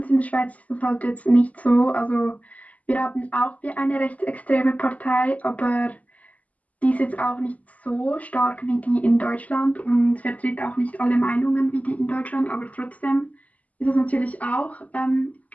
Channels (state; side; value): late; right; 0.073 ms